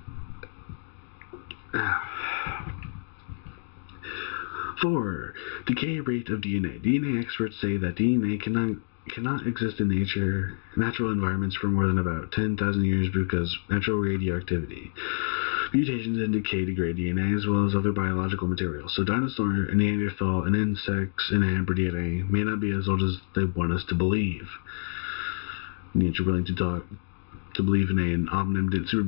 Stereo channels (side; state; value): right; silent; digital silence